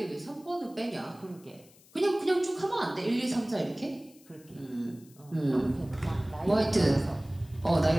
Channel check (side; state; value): left; noise; hiss, 26 dB below the sound